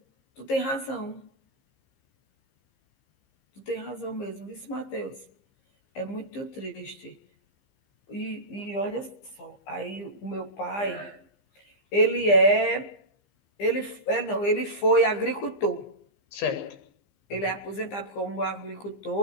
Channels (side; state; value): right; late; 15 ms